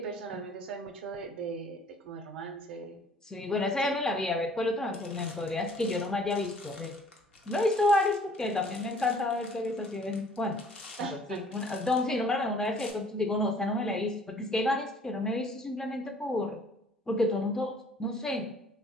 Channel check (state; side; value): normal; both; correlation 0.55